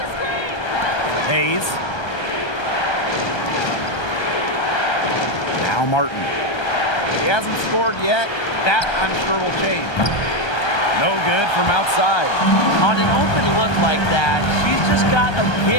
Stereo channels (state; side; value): late; right; 1.3 ms